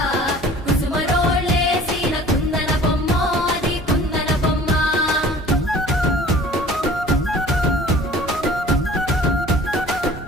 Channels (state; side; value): normal; both; correlation 0.48